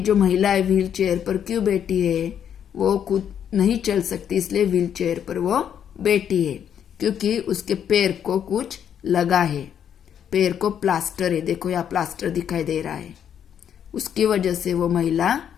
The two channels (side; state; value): right; quieter; 8.9 dB